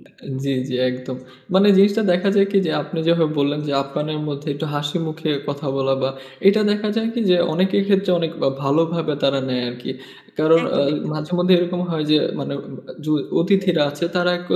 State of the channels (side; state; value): both; identical; correlation 1.00